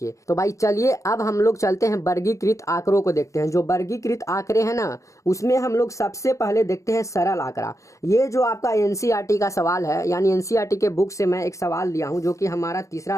तो भाई चलिए अब हम लोग चलते हैं वर्गीकृत आंकड़ों को देखते हैं। जो वर्गीकृत आंकड़े हैं ना, उसमें हम लोग सबसे पहले देखते हैं सरल आंकड़ा। ये जो आपका एनसीईआरटी का सवाल है, यानी एनसीईआरटी के बुक से मैं एक सवाल लिया हूँ जो कि हमारा तीसरा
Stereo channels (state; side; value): late; right; 0.15 ms